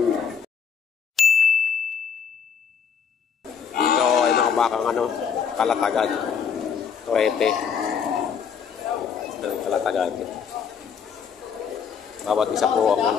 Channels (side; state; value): right; quieter; 6.9 dB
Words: Bakang kalatagan, torete ng kalatagan. Bawat isa po ang